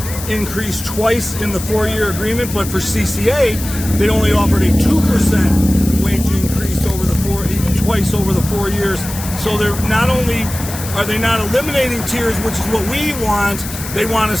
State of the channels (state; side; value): noise; left; hiss, 10 dB below the sound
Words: increase twice in the 4-year agreement, but for CCA, they only offered a 2% wage increase twice over the 4 years. So they're not only are they not eliminating tiers, which is what we want, they want